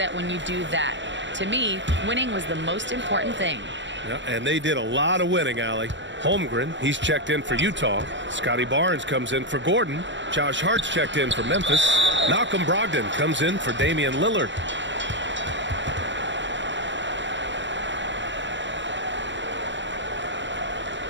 when you do that. To me, winning was the most important thing." Yeah, and they did a lot of winning, Allie. Holmgren, he's checked in for Utah. Scotty Barnes comes in for Gordon. Josh Hart's checked in for Memphis. Malcolm Brogdon comes in for Damian Lillard.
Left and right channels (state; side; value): late; left; 0.53 ms